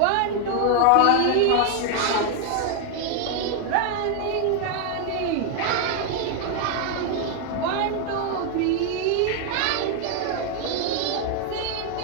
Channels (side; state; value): both; different; correlation 0.00